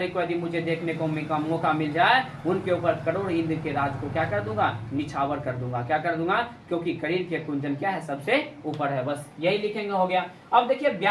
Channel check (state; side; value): identical; both; correlation 1.00